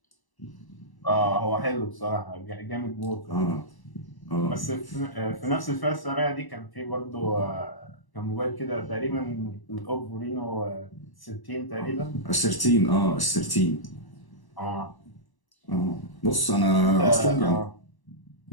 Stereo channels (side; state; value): right; late; 1.0 ms